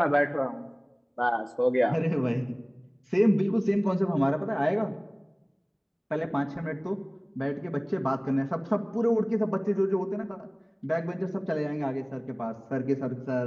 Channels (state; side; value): identical; both; correlation 1.00